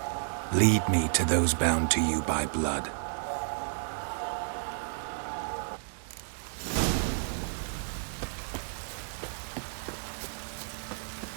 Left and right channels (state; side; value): silent; left; digital silence